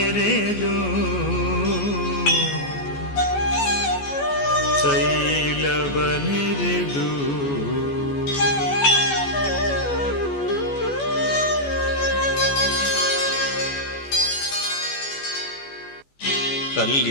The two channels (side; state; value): right; late; 14 ms